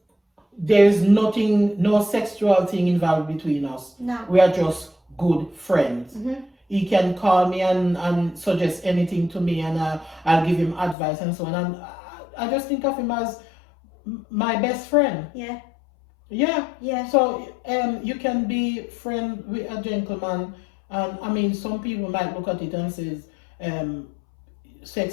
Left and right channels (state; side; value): drops out; right; at 11.0 s